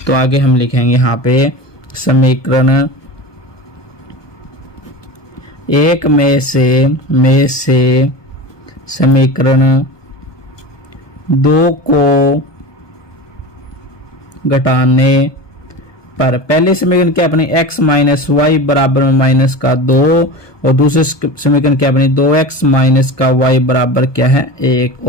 तो आगे हम लिखेंगे यहाँ पे समीकरण 1 में से समीकरण 2 को घटाने पर पहले समीकरण क्या अपनी x माइनस वाई बराबर में -2, और दूसरे समीकरण क्या अपनी 2x माइनस का y बराबर क्या है? 1।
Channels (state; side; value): late; right; 1.2 ms